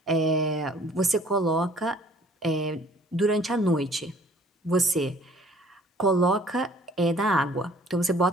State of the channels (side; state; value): both; normal; correlation 0.56